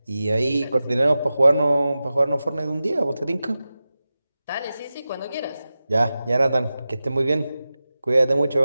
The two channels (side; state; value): both; inverted; correlation -0.94